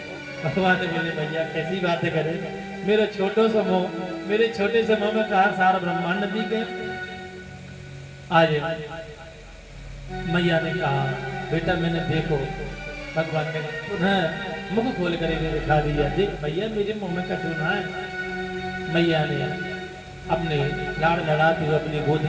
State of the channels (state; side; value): identical; both; correlation 1.00